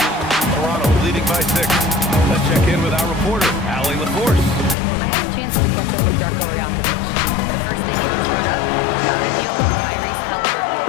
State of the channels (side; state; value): right; drops out; at 4.8 s